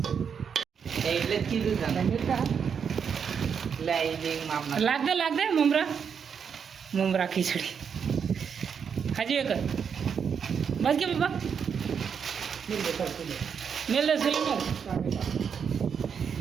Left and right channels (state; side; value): quieter; left; 6.9 dB